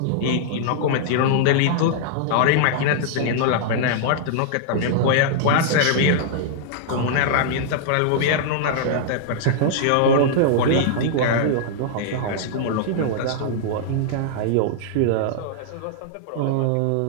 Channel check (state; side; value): different; both; correlation -0.01